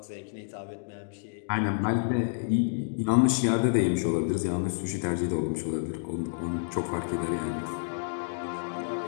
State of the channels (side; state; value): right; silent; digital silence